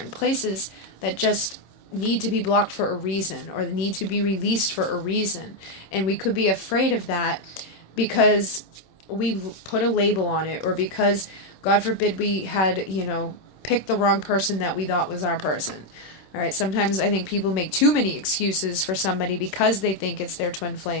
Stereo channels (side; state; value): right; late; 26 ms